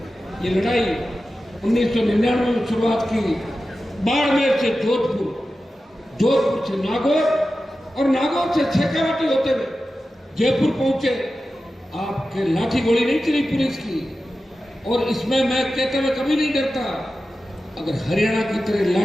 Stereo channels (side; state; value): both; normal; correlation 0.93